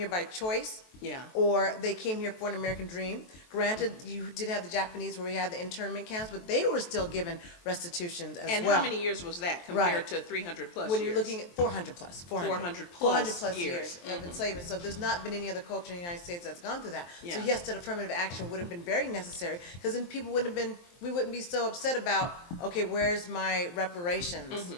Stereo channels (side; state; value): right; late; 23 ms